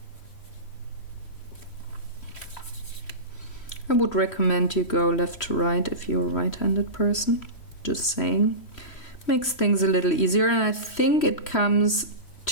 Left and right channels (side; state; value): right; late; 3.1 ms